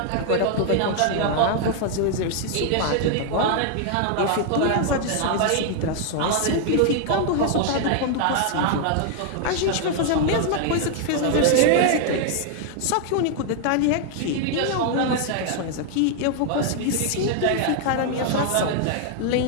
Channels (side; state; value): both; different; correlation 0.00